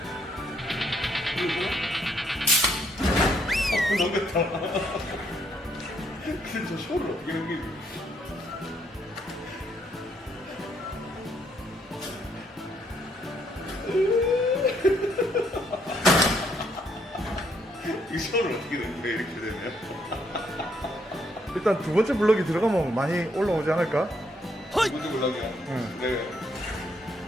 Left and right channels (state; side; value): normal; both; correlation 0.71